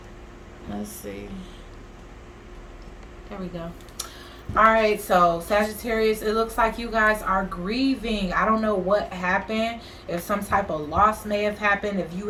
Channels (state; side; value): identical; both; correlation 1.00